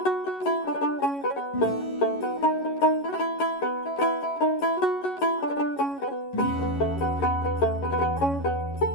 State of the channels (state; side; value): late; right; 11 ms